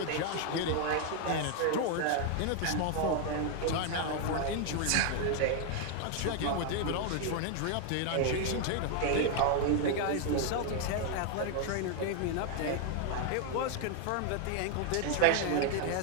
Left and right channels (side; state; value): both; different; correlation 0.01